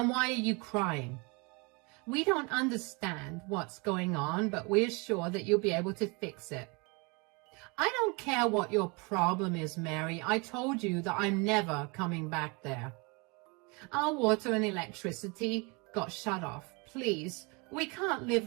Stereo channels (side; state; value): left; quieter; 29.3 dB